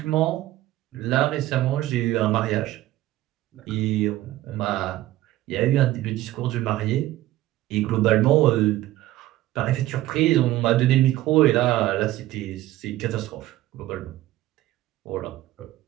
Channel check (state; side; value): quieter; left; 15.5 dB